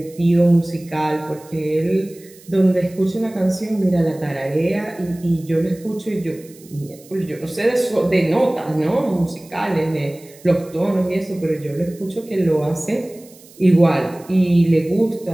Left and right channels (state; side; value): noise; right; hiss, 24 dB below the sound